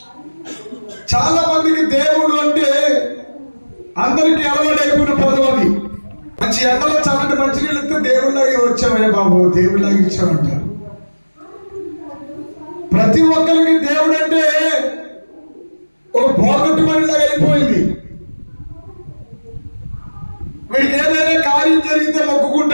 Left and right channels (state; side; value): inverted; both; correlation -1.00